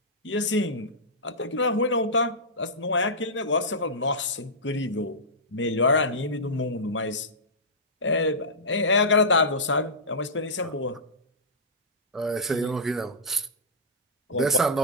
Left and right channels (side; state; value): both; normal; correlation -0.14